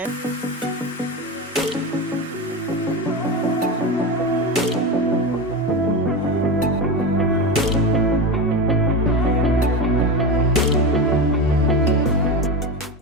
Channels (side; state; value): both; normal; correlation 0.20